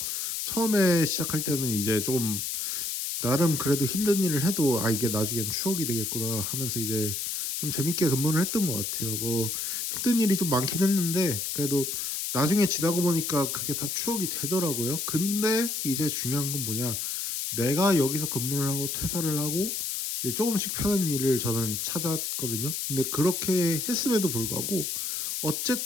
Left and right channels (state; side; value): noise; left; hiss, 2 dB below the sound